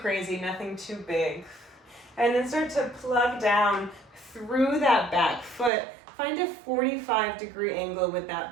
nothing too big. And then start to plug down through that back foot. Find a 45-degree angle with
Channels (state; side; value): drops out; left; at 5.7 s